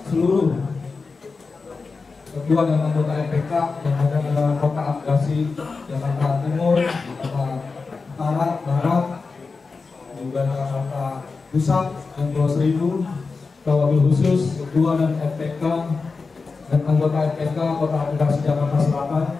seluruh ketua dan anggota FPK yang ada di Kota Administrasi Jakarta Timur, Jakarta Utara, Barat, juga Jakarta Pusat dan Pulau Seribu, wabil khusus ketua dan FPK dan anggota FPK Kota Administrasi Jakarta Selatan,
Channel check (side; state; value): right; quieter; 4.4 dB